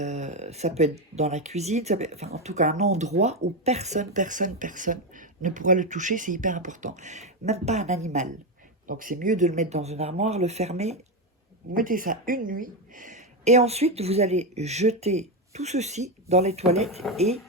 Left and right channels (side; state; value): both; normal; correlation 0.10